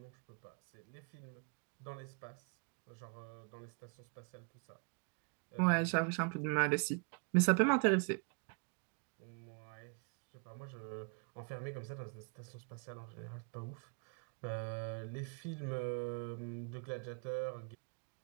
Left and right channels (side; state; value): left; quieter; 38.1 dB